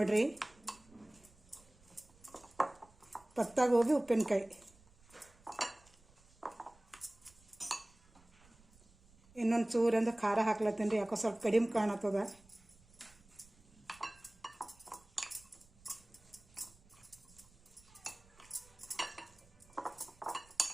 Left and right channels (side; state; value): right; noise; rumble, 28 dB below the sound